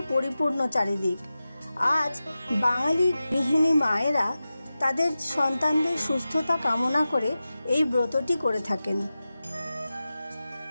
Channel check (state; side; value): inverted; both; correlation -0.94